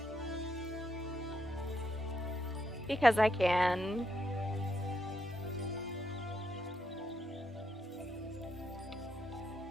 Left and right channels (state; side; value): normal; both; correlation 0.79